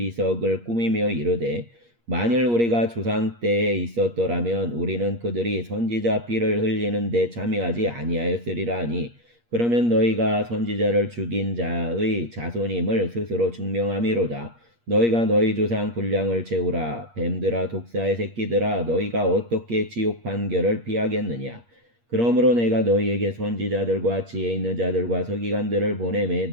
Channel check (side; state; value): left; late; 8.5 ms